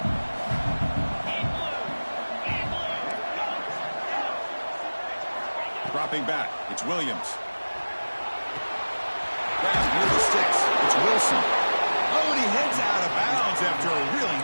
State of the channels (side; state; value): both; inverted; correlation -1.00